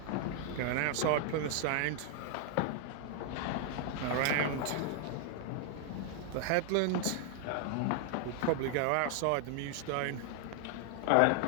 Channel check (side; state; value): both; different; correlation 0.00